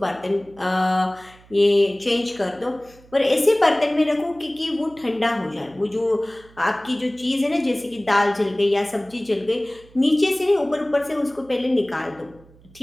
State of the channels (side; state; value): right; noise; hum, 26 dB below the sound